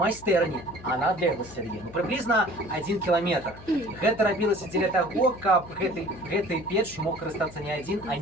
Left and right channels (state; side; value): noise; left; hum, 18 dB below the sound